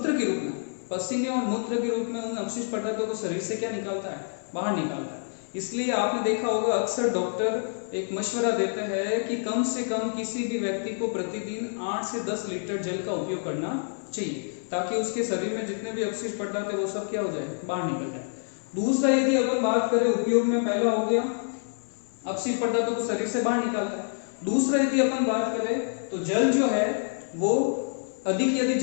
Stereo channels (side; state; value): right; silent; 60 dB below the other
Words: के रूप में, पसीने और मूत्र के रूप में उन अवशिष्ट पदार्थों को शरीर से क्या निकालता है? बाहर निकालता है। इसलिए आपने देखा होगा अक्सर डॉक्टर एक मशवरा देते हैं कि कम से कम किसी भी व्यक्ति को प्रतिदिन 8 से 10 लीटर जल का उपयोग करना चाहिए, ताकि उसके शरीर में जितने भी अवशिष्ट पदार्थ है वो सब क्या हो जाए? बाहर निकल जाए। दूसरा, यदि अपन बात करें उपयोग में, पहला हो गया अवशिष्ट पदार्थों को शरीर से बाहर निकालता है। दूसरा, यदि अपन बात करें तो जल जो है वो अधिक यदि